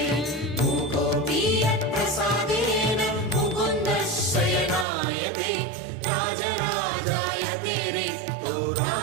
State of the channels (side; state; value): left; drops out; at 4.9 s